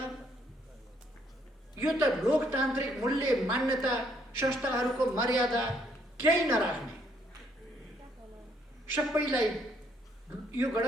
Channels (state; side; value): normal; both; correlation 0.69